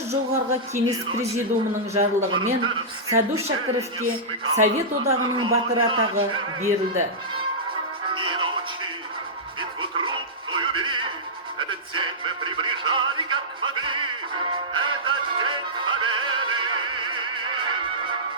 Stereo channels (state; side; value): normal; both; correlation -0.14